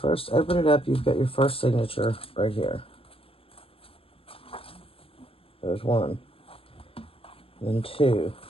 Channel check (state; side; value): late; right; 0.27 ms